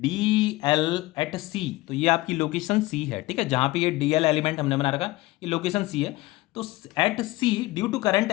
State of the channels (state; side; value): quieter; right; 19.4 dB